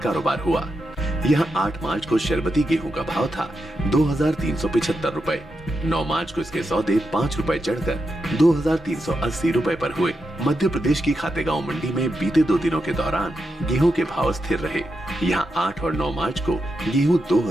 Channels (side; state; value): both; normal; correlation 0.86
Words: कारोबार हुआ। यहाँ 8 मार्च को शरबती गेहूं का भाव था 2,375 रुपए। 9 मार्च को इसके सौदे 5 रुपए चढ़कर 2,380 रुपए पर हुए। मध्य प्रदेश की खातेगांव मंडी में बीते 2 दिनों के दौरान गेहूं के भाव स्थिर रहे। यहाँ 8 और 9 मार्च को गेहूं